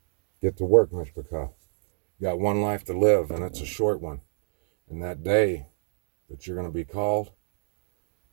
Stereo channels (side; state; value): left; silent; digital silence